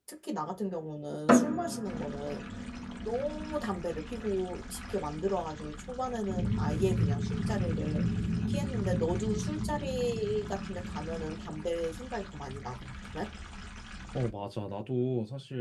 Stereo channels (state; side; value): identical; both; correlation 1.00